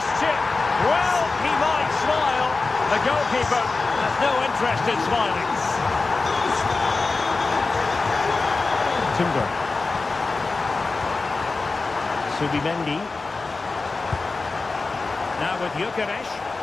chip. Well, he might smile. The goalkeeper has no interest in smiling. Timber. Subimendi. Now with Gyökeres.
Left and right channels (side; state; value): right; quieter; 3.9 dB